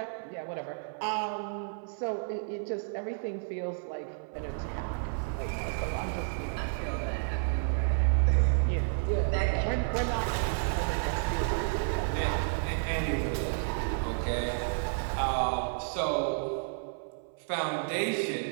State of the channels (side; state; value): left; silent; 57 dB below the other